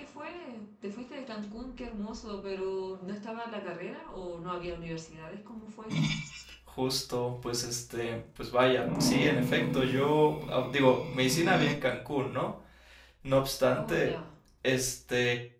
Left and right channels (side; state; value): both; identical; correlation 1.00